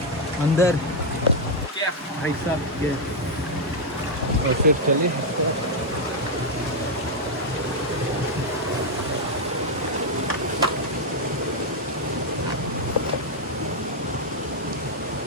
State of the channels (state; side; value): normal; both; correlation 0.00